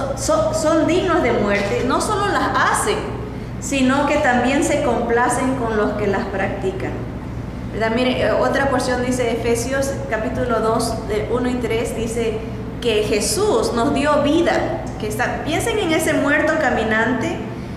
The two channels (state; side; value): identical; both; correlation 1.00